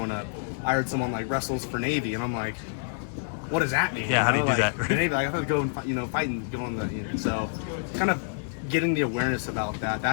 up, I heard someone like wrestles for Navy, and I'm like, what does that mean? Yeah, how do you do that? The Navy, like, I thought to go and, you know, fight and go on the, you know, so kind of getting the awareness about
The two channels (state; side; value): silent; right; digital silence